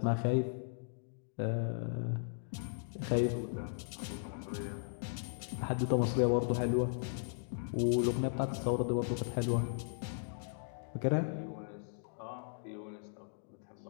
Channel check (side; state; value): right; silent; digital silence